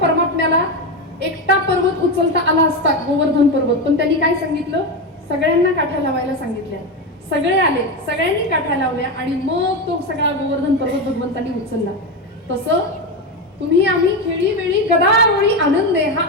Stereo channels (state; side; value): normal; both; correlation 0.14